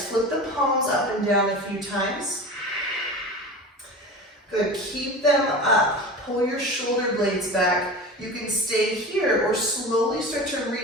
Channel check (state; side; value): normal; both; correlation 0.32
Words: Flip the palms up and down a few times. Good, keep them up. Pull your shoulder blades back. You can stay here or slowly start to